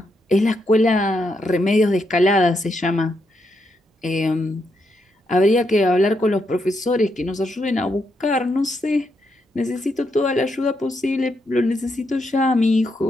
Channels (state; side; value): normal; both; correlation 0.80